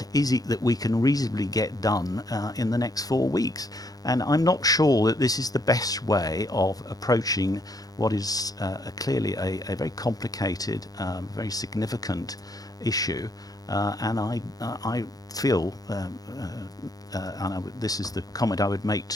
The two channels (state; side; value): late; right; 0.18 ms